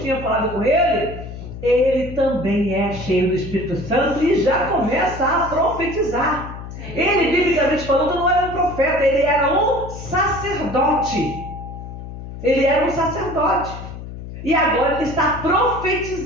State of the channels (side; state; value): left; noise; hum, 11 dB below the sound